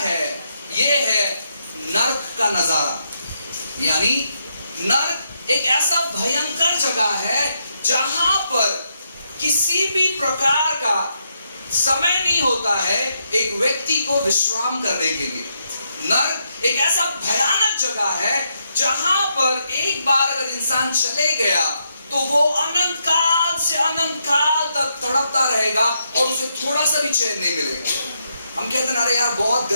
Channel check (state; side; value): inverted; both; correlation -0.79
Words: ये है नर्क का नजारा। यानी नर्क एक ऐसा भयंकर जगह है जहां पर किसी भी प्रकार का समय नहीं होता है एक व्यक्ति को विश्राम करने के लिए। नर्क एक ऐसा भयानक जगह है जहां पर एक बार अगर इंसान चले गया तो वो अनंत काल से अनंत काल तक तड़पता रहेगा और उसे थोड़ा सा भी चैन नहीं मिलेगा। हम कहते हैं अरे यार बहुत